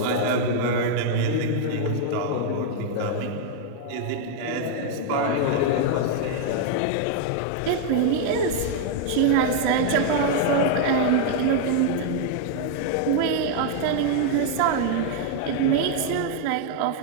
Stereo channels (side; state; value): both; different; correlation 0.00